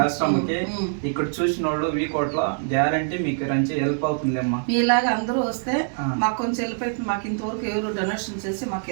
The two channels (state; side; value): silent; left; digital silence